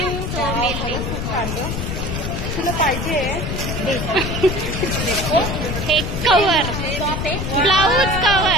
तुला पाहिजे हे कवर.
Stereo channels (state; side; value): noise; left; rumble, 3 dB below the sound